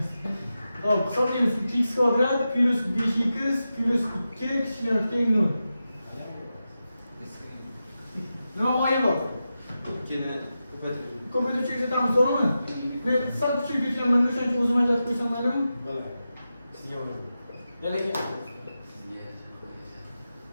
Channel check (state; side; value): inverted; both; correlation -0.91